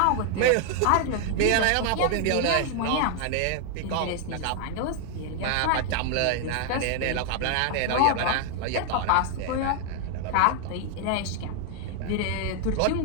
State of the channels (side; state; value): both; different; correlation 0.00